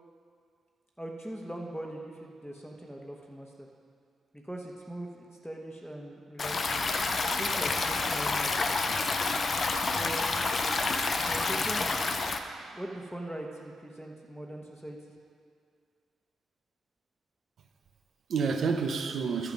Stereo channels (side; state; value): both; normal; correlation 0.83